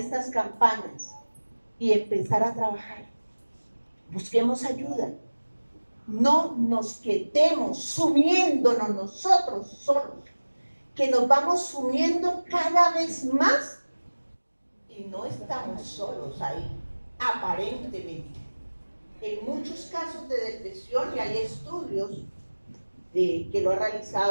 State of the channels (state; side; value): inverted; both; correlation -1.00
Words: campañas y empezar a trabajar. Busquemos ayuda. No nos quedemos sumiéndonos nosotros solos, que nos vamos sumiendo cada vez más y no estamos solos ahí, aparentemente. En muchos casos de depresión, y hay estudios que lo ha